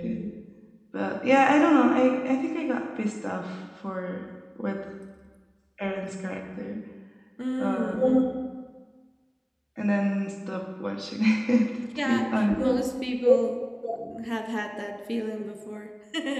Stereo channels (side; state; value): both; identical; correlation 1.00